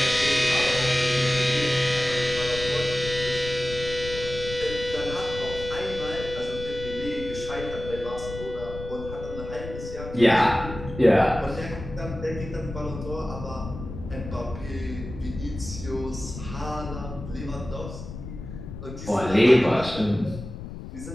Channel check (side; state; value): left; noise; rumble, 10 dB below the sound